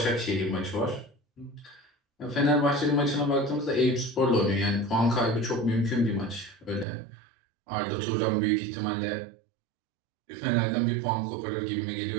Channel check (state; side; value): drops out; left; at 6.9 s